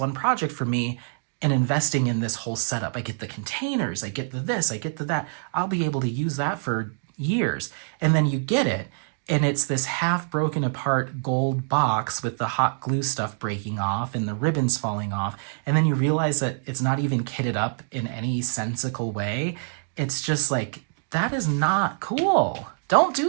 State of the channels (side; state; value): left; silent; digital silence